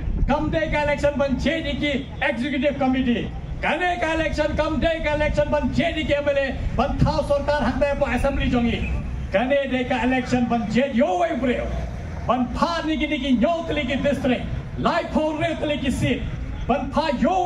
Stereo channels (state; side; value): identical; both; correlation 1.00